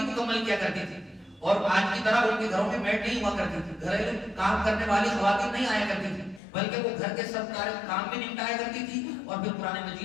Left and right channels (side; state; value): right; drops out; at 6.4 s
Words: مکمل کیا کرتی تھی اور آج کی طرح ان کے گھروں میں میڈ نہیں ہوا کرتی تھی، گھریلو کام کرنے والی خواتین نہیں آیا کرتی تھی، بلکہ وہ گھر کے سب کام بھی نمٹایا کرتی تھی اور پھر قرآن